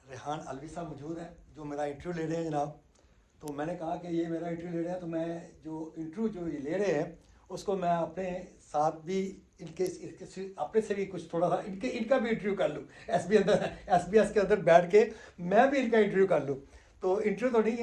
रेहान अलवी साहब मौजूद हैं जो मेरा इंटरव्यू ले रहे हैं जनाब। तो मैंने कहा कि ये मेरा इंटरव्यू ले रहे हैं तो मैं जो इंटरव्यू जो ये ले रहे हैं उसको मैं अपने साथ भी इनके अपने से भी कुछ थोड़ा सा इनका भी इंटरव्यू कर लूँ। SBS के अंदर बैठ के मैं भी इनका इंटरव्यू कर लूँ। तो इंटरव्यू तो नहीं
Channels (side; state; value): both; identical; correlation 1.00